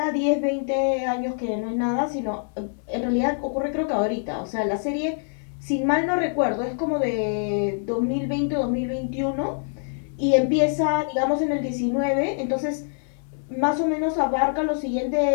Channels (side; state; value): right; silent; 62 dB below the other